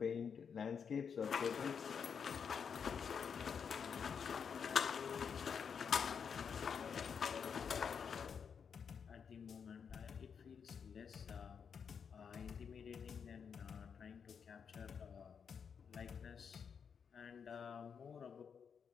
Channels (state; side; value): quieter; right; 6.7 dB